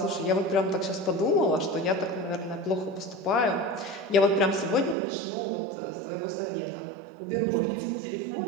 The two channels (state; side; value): drops out; left; at 5.0 s